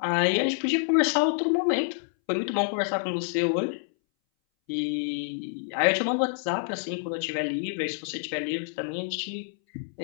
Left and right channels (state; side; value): silent; right; 60 dB below the other